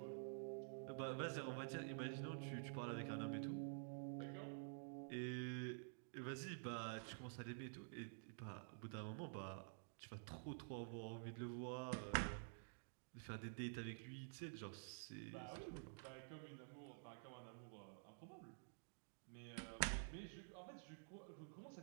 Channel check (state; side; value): silent; left; digital silence